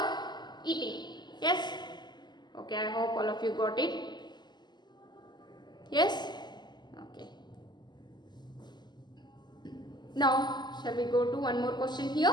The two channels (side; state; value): right; late; 0.21 ms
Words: eating. Yes. Okay, I hope all of you got it. Yes. Okay. Now, shall we go to one more question